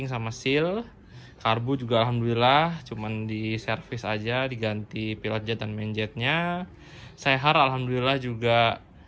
sama seal. Karbu juga alhamdulillah cuman di servis aja, diganti pilot jet dan main jetnya. Sehar alhamdulillah juga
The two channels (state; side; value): identical; both; correlation 1.00